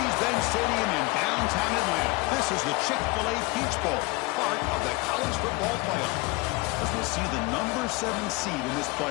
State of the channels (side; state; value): right; quieter; 24.6 dB